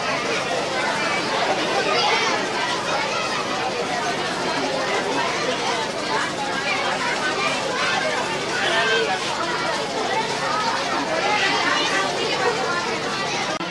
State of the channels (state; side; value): identical; both; correlation 1.00